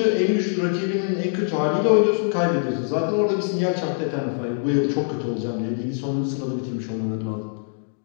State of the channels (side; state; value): right; silent; 63 dB below the other